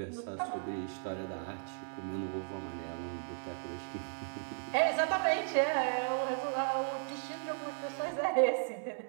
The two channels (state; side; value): silent; left; digital silence